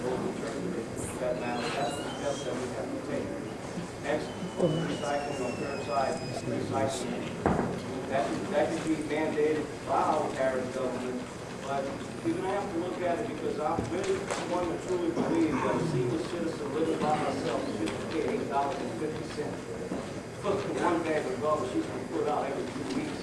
Recycling on curbside recycling. That could be mandated by our parish government, but we're gonna have to look at it because I'm really one to truly believe that a senior citizen living by herself should pay $8.50 for one bag of garbage she's gonna put out every 2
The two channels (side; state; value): both; identical; correlation 1.00